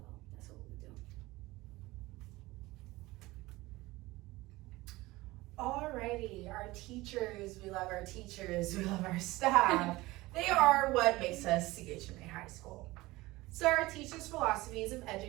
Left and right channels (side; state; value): left; quieter; 19.9 dB